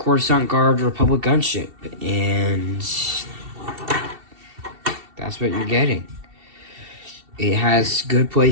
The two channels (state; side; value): late; left; 2.7 ms